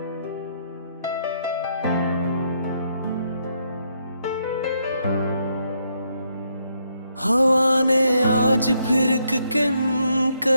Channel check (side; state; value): both; inverted; correlation -0.76